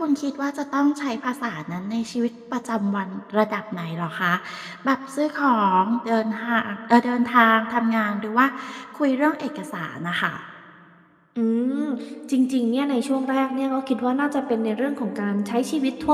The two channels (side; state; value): both; identical; correlation 1.00